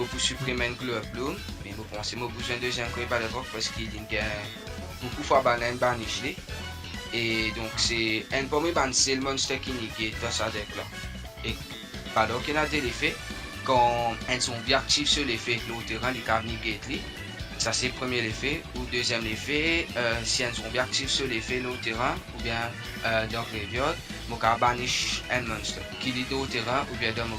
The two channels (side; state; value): both; identical; correlation 1.00